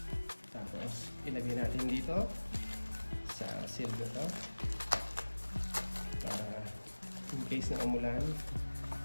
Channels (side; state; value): both; inverted; correlation -1.00